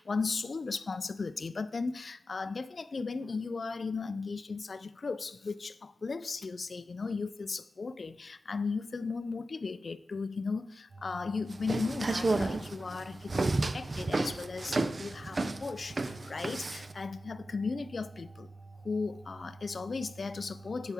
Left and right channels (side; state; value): both; normal; correlation 0.92